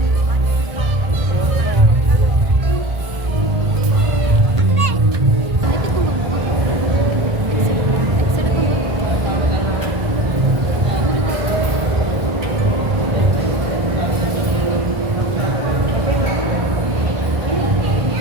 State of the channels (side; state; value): left; late; 1.5 ms